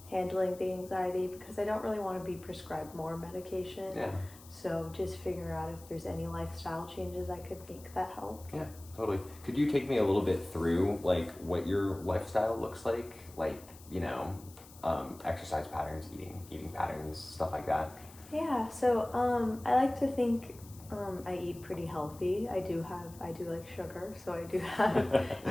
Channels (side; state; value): left; noise; hiss, 21 dB below the sound